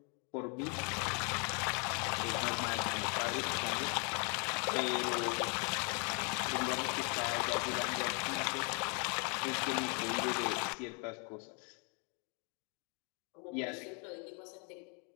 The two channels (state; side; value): quieter; right; 36.2 dB